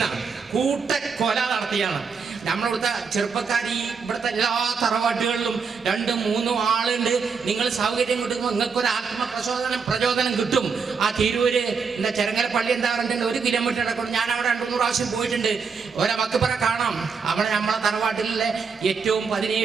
കൂട്ടക്കൊല നടത്തിയാണ്. നമ്മളിവിടുത്തെ ചെറുപ്പക്കാർ ഈ ഇവിടുത്തെ എല്ലാ തറവാട്ടുകളിലും 2, 3 ആളുണ്ട്. നിങ്ങൾ സൗകര്യം കിട്ടുമ്പോൾ നിങ്ങൾക്കൊരു പ്രചോദനം കിട്ടും. ആ തിരൂര് ചെരങ്ങര പള്ളി എന്താ പറഞ്ഞിട്ടുണ്ട്, 1 കിലോമീറ്റർ ഇടക്കൊണ്ട് ഞാൻ അവിടെ 2-3 പ്രാവശ്യം പോയിട്ടുണ്ട്. മക്ബറ കാണാം. അവിടെ നമ്മളെ തറവാട്ടിലെ ഏറ്റവും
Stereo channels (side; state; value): left; quieter; 5.5 dB